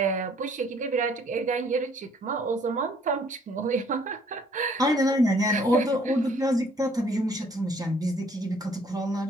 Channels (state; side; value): normal; both; correlation 0.61